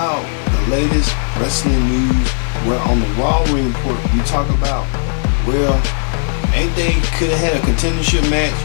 the latest wrestling news. We're on the RAW report. We talk about, well, ain't they could have had a contendership match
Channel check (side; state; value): right; silent; 69 dB below the other